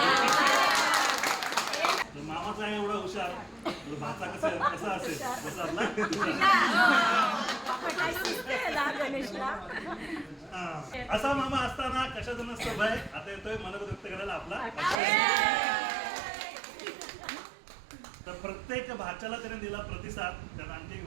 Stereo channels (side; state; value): left; drops out; at 15.0 s